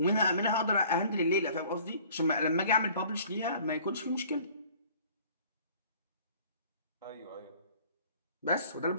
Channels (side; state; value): both; inverted; correlation -0.52